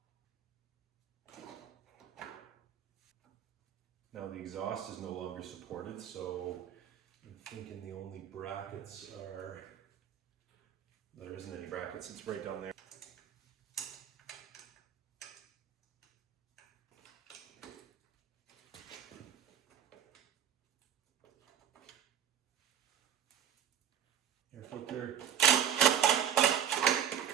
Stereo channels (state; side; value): quieter; left; 9.6 dB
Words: Now the exhaust is no longer supported, so I'm thinking the only brackets are, there isn't any brackets, it's right down there. Air filter.